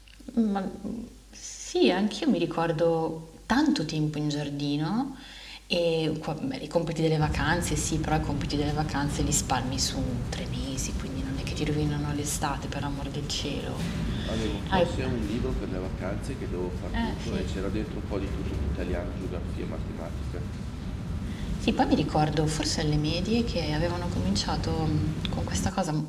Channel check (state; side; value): identical; both; correlation 1.00